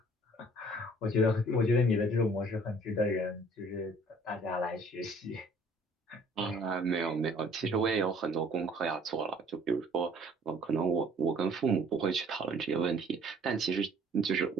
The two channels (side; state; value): both; normal; correlation 0.56